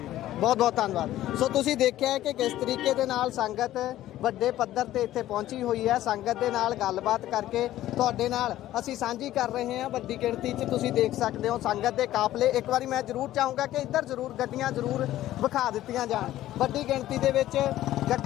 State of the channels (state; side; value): quieter; right; 14.0 dB